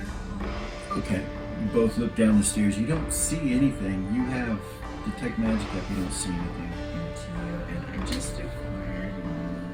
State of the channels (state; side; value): identical; both; correlation 1.00